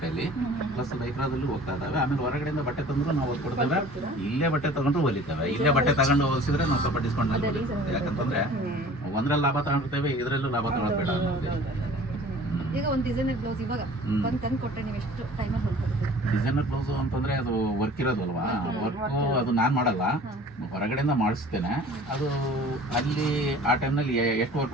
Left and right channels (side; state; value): both; normal; correlation 0.47